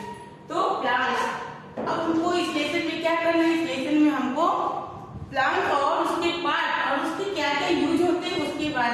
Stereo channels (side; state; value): both; identical; correlation 1.00